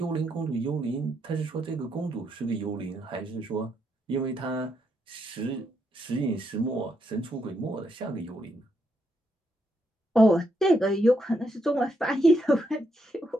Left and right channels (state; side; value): normal; both; correlation 0.78